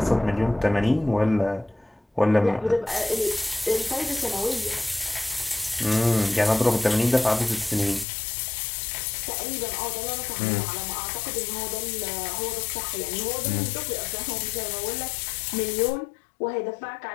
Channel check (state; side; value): drops out; right; at 8.1 s